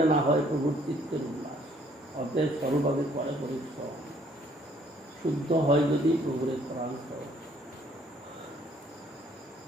না হয় প্রভুর চিত্তের উল্লাস। অতএব স্বরূপভাবে করে পরিশ্রম, শুদ্ধ হয় যদি প্রভুরের প্রাণ স্বরূপ।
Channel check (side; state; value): both; normal; correlation 0.62